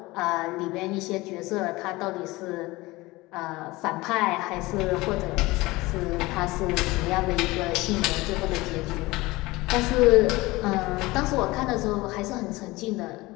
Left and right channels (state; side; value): quieter; right; 20.9 dB